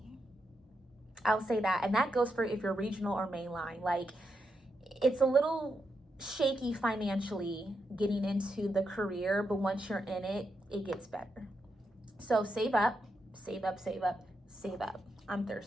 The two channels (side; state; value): both; normal; correlation 0.84